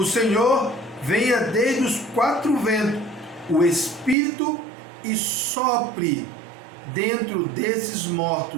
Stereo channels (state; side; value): drops out; left; at 4.2 s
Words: Senhor, venha desde os quatro ventos, o Espírito, e sopre dentro desses